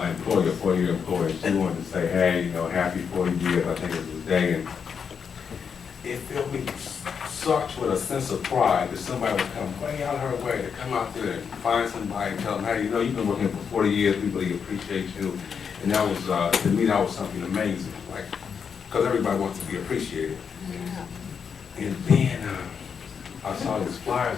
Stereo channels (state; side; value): quieter; right; 6.6 dB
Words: employee, a 4-year employee. She wanted to say, hey, happy 40 years, I think it was the day. And it filled me such with a sense of pride that somebody would come way out of her way to come out there and find somebody and tell them, hey, you've been working for 40 years, we really appreciate you. And that was, to me, that was something amazing, like, because everybody wants to be appreciated. Yeah. And then I saw these flyers